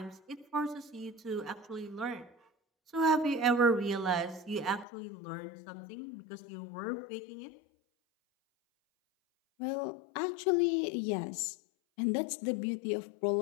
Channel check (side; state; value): right; drops out; at 4.9 s